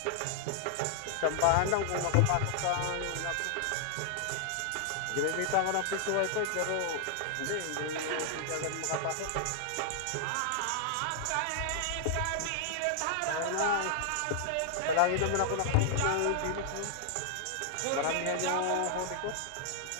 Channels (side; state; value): both; different; correlation -0.01